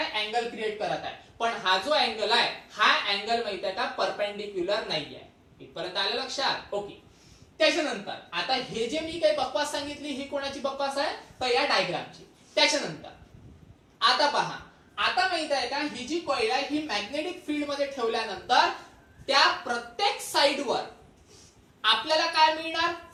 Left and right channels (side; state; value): both; identical; correlation 1.00